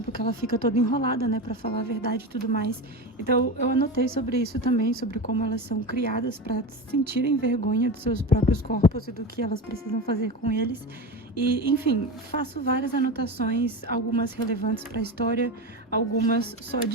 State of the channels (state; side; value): normal; both; correlation 0.23